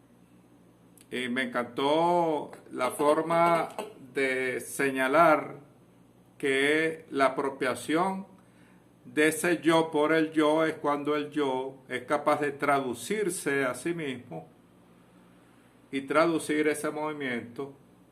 y me encantó la forma de señalar que la apropiación de ese yo por el yo es cuando el yo es capaz de traducirse a sí mismo y traducir ese movimiento,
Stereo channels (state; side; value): identical; both; correlation 1.00